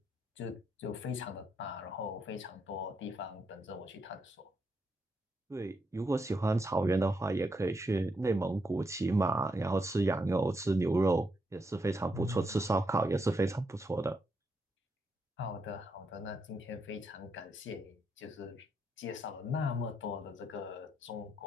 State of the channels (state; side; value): normal; both; correlation 0.80